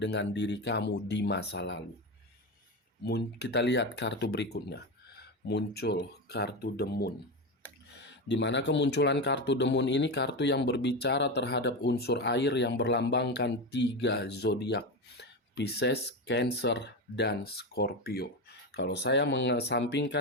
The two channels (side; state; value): both; normal; correlation 0.18